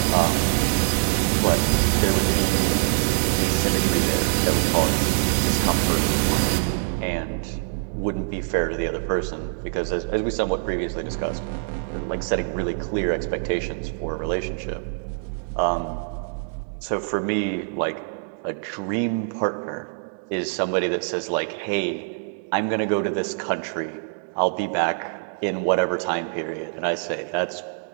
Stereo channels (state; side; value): silent; left; digital silence